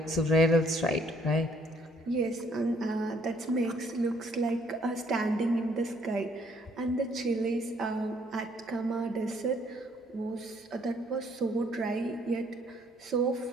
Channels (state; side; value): normal; both; correlation 0.65